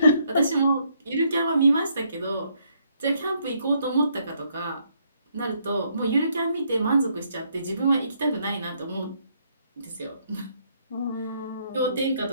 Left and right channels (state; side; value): inverted; both; correlation -0.72